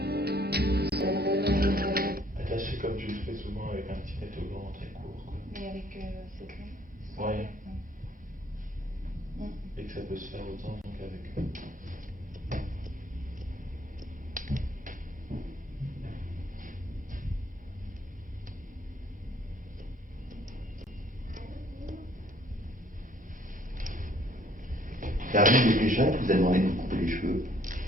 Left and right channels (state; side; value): normal; both; correlation 0.61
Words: Attaché comme tu le fais souvent avec un petit métogan très court. Mais avec cette langue. Ouais. Et que ça peut se faire autant qu'avec. T'as vu des gens qui vous a demandé de vous couper les cheveux?